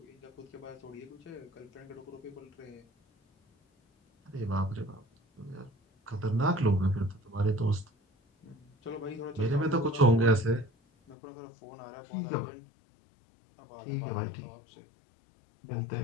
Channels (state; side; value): drops out; right; at 11.2 s